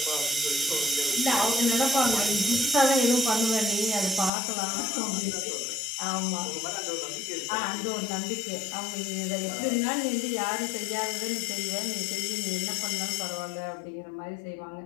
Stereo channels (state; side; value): drops out; right; at 4.3 s